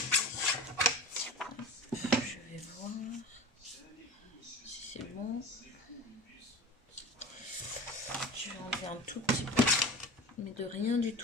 voir si c'est bon. Je vais enlever un tout petit peu, mais de rien du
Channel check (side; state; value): both; normal; correlation 0.34